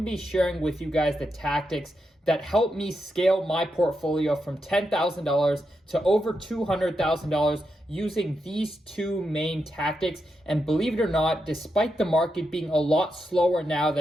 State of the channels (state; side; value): normal; both; correlation 0.85